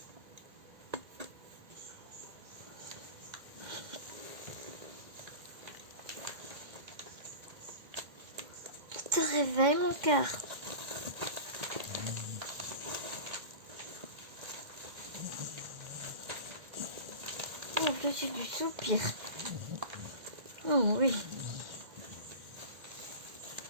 Je te réveille, mon cœur. Oh, que j'ai du soupir. Oh oui.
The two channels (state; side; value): late; left; 2.1 ms